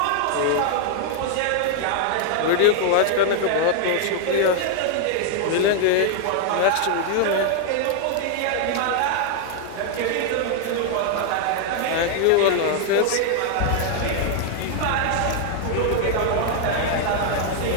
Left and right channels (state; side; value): different; both; correlation 0.00